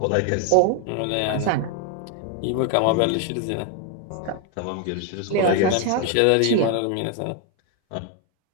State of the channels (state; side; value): different; both; correlation 0.01